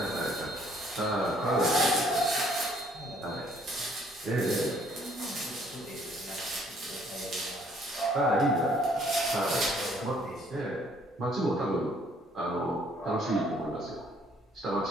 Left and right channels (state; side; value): normal; both; correlation 0.62